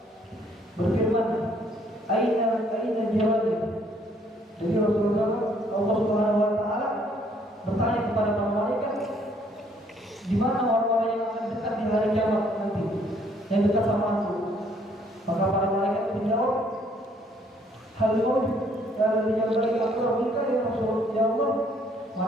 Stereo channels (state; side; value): normal; both; correlation 0.64